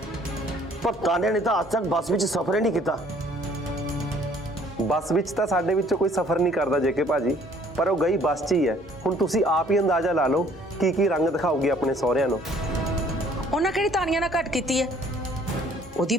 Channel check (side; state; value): both; normal; correlation 0.59